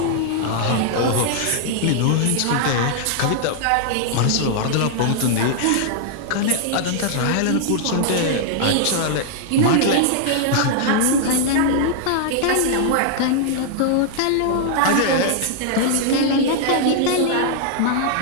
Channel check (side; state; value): both; different; correlation -0.01